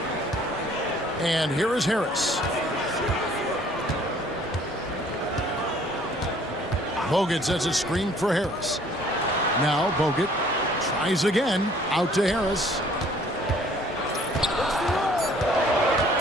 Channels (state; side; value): normal; both; correlation 0.57